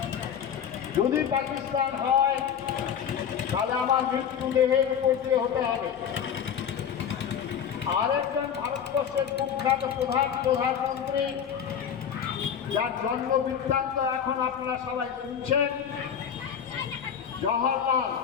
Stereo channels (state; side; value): quieter; right; 8.2 dB